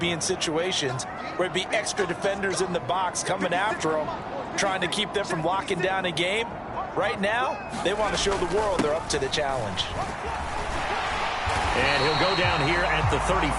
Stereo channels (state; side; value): identical; both; correlation 1.00